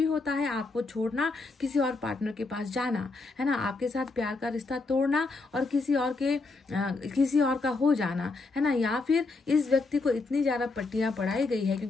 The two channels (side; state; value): right; quieter; 3.7 dB